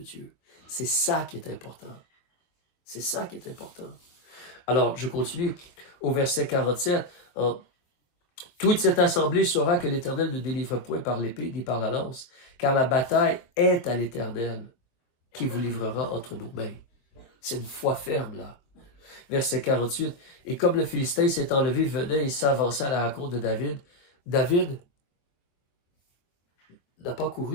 Dieu. C'est ça qui est important. C'est ça qui est important. Alors, je continue au verset 47. Toute cette assemblée saura que l'Éternel ne délivre point par l'épée ni par la lance, car la bataille est à l'Éternel qui vous livrera entre nos mains. C'est une foi ferme, là. Verset 48. Et comme le Philistin s'est enlevé, venait et s'avança à la rencontre de David, David n'a pas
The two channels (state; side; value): late; right; 23 ms